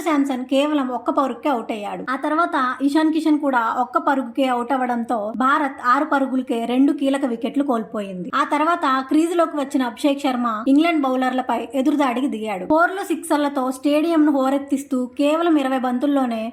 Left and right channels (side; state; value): both; identical; correlation 1.00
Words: శాంసన్ కేవలం ఒక్క పరుగుకే అవుట్ అయ్యాడు. ఆ తర్వాత ఇషాన్ కిషన్ కూడా ఒక్క పరుగుకే అవుట్ అవ్వడంతో భారత్ 6 పరుగులకే 2 కీలక వికెట్లు కోల్పోయింది. ఆ తర్వాత క్రీజ్ లోకి వచ్చిన అభిషేక్ శర్మ ఇంగ్లాండ్ బౌలర్లపై ఎదురుదాడికి దిగాడు. 4లు 6లతో స్టేడియం ను హోరెత్తిస్తూ కేవలం 20 బంతుల్లోనే